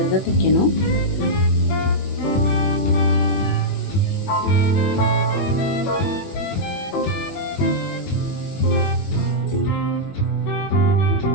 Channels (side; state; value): right; late; 21 ms